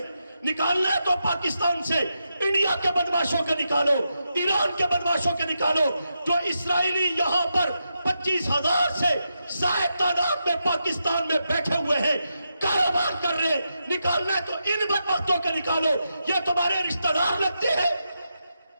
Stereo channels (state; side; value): inverted; both; correlation -0.86